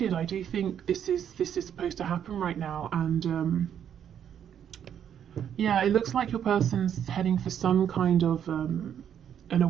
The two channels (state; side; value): quieter; left; 9.1 dB